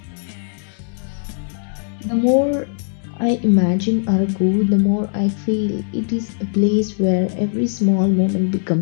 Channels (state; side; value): silent; right; 66 dB below the other